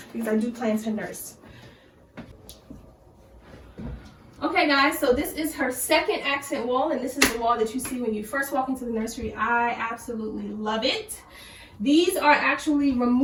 because I do plan to nurse. Okay guys, so this is her second accent wall, and this is the wall that you see when you first walk into the nursery. I absolutely love it. These are actually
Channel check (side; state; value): both; identical; correlation 1.00